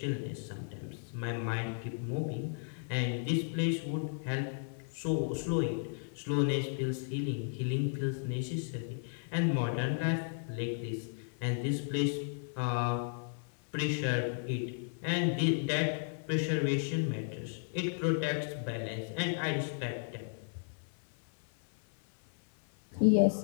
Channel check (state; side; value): silent; right; 55 dB below the other